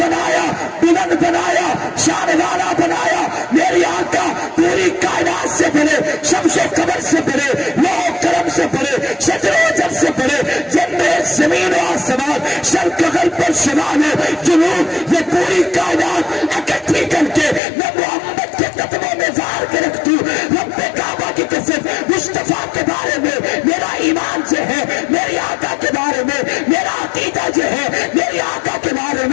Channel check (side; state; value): right; drops out; at 17.6 s